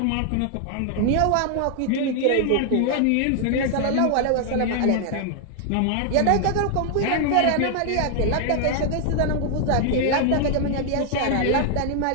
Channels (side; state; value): both; different; correlation 0.00